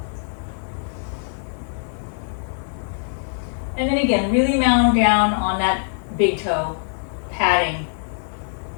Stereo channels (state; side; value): silent; right; 64 dB below the other